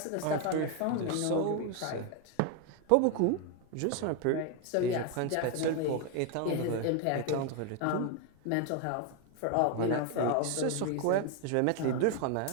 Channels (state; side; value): different; both; correlation 0.01